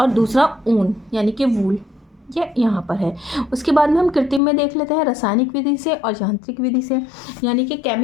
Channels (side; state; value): right; drops out; at 4.4 s